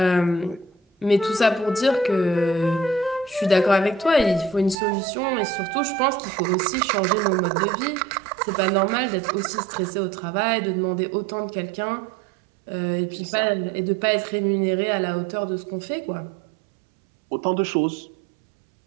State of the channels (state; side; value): drops out; left; at 4.8 s